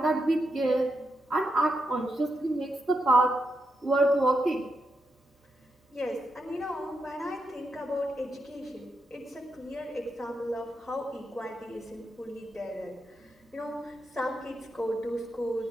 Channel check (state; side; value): normal; both; correlation 0.85